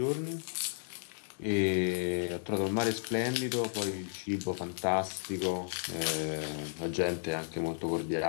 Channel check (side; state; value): right; silent; 56 dB below the other